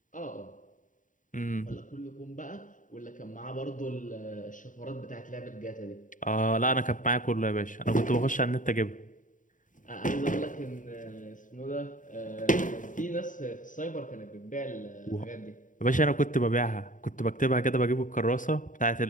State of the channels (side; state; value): right; late; 0.38 ms